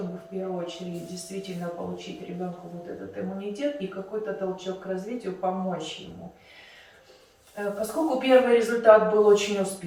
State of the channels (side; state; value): both; identical; correlation 1.00